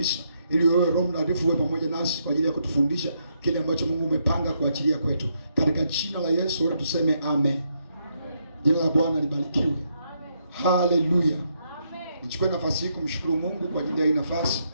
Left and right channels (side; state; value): both; inverted; correlation -0.77